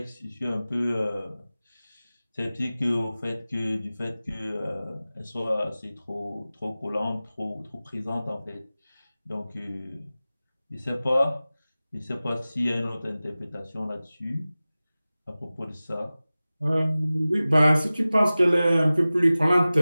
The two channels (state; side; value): inverted; both; correlation -0.97